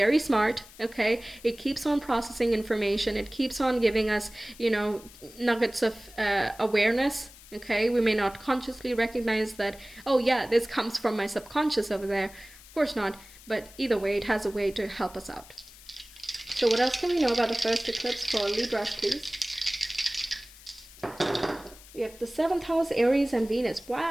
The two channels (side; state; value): left; noise; hiss, 21 dB below the sound